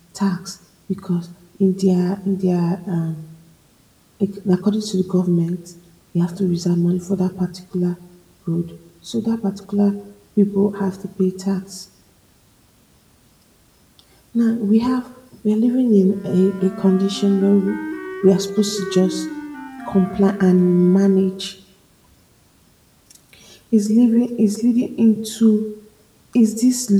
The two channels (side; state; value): both; identical; correlation 1.00